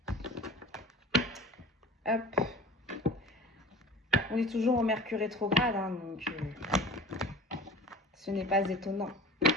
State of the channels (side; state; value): both; normal; correlation 0.39